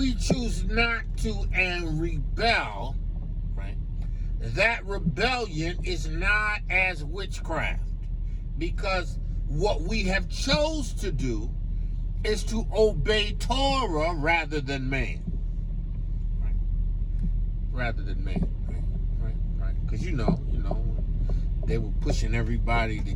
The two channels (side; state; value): both; identical; correlation 1.00